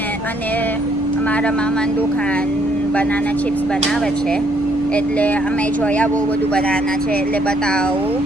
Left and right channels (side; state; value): left; noise; rumble, 18 dB below the sound